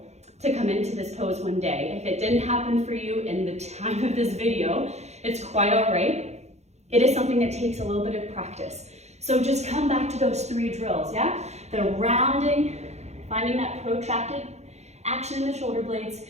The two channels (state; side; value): late; left; 0.32 ms